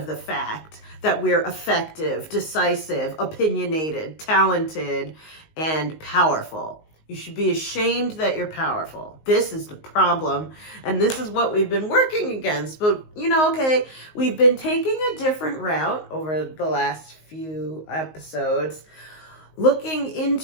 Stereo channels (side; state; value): right; late; 19 ms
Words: the fact that we're effective, decisive, opinionated, talented, and powerful. You should be ashamed that you're powerful. This is the problem, and this is what we've been working against. But, we've been taking a different route over the last few episodes, looking